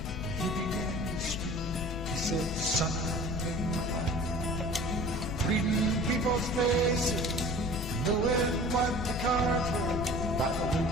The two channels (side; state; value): left; noise; rumble, 6 dB below the sound